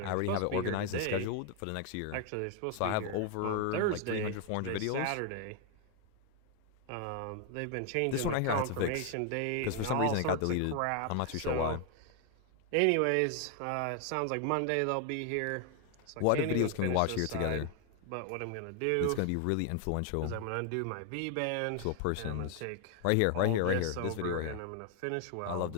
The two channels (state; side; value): different; both; correlation 0.00